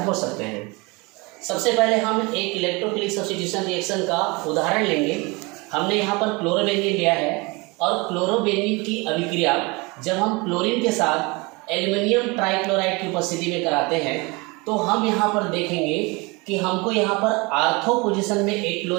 हो सकते हैं। सबसे पहले हम एक इलेक्ट्रोफिलिक सब्स्टिट्यूशन रिएक्शन का उदाहरण लेंगे। हमने यहाँ पर क्लोरोबेंजीन लिया है और क्लोरोबेंजीन की अभिक्रिया जब हम क्लोरीन के साथ एल्युमिनियम ट्राइक्लोराइड की उपस्थिति में कराते हैं तो हम यहाँ पर देखेंगे कि हमको यहाँ पर आर्थो पोजीशन में एक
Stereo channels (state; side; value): quieter; left; 26.3 dB